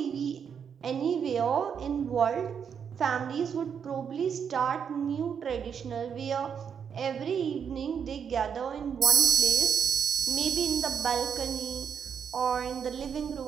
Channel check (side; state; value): left; quieter; 7.3 dB